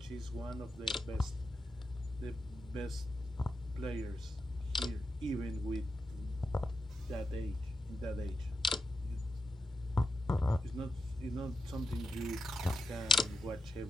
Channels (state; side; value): normal; both; correlation 0.87